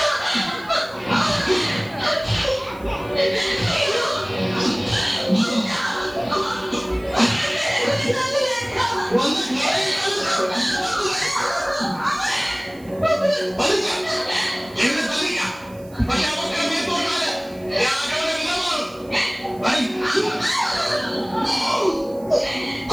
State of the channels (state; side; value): noise; right; hiss, 25 dB below the sound